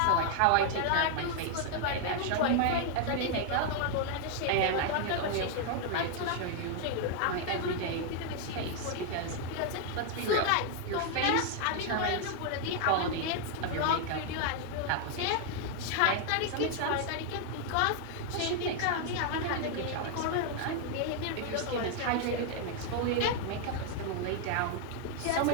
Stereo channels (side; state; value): both; different; correlation 0.00